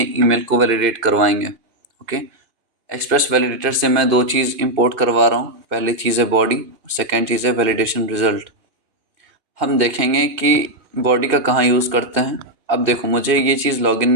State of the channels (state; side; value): late; left; 2.6 ms